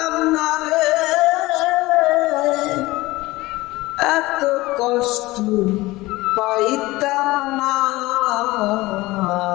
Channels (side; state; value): right; quieter; 19.7 dB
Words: না রে, এত কষ্ট পাইতাম না।